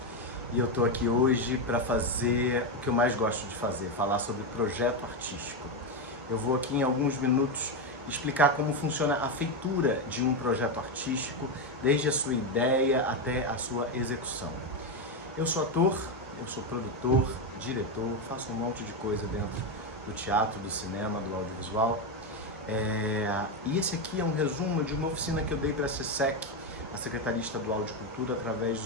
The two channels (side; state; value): both; normal; correlation 0.09